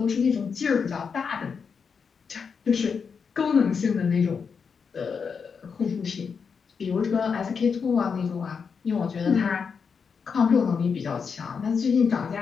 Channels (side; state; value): right; quieter; 6.0 dB